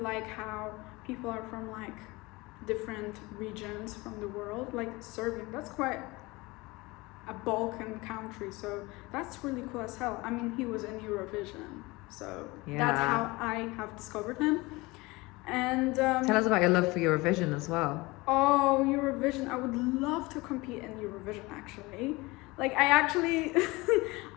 like how people are from like different regions from the world, like Serbian, that's quite a Balkan country, so that's really cool as hell. I mean, he was in Eurovision, so that's how I have discovered him. And tell us about your love for Eurovision as well. Oh, Eurovision! I would love to compete in Eurovision. Actually, like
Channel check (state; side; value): quieter; right; 22.7 dB